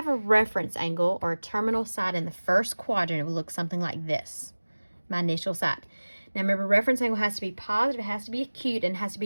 a reference angle or a terminal side in the first quadrant, it will look something like this, my initial side. Now remember, reference angle has to be positive, it has to be acute, and it has to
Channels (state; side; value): inverted; both; correlation -1.00